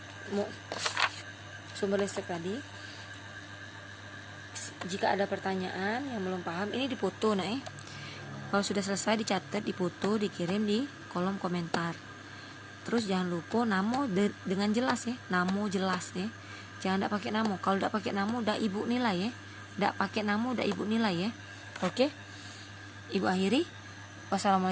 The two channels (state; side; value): identical; both; correlation 1.00